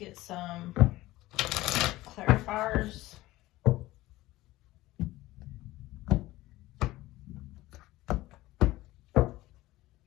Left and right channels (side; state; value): right; quieter; 17.6 dB